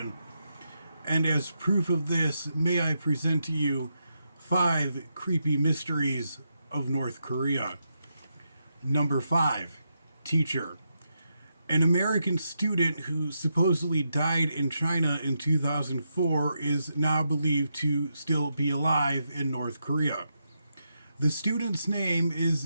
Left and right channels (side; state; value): both; inverted; correlation -0.84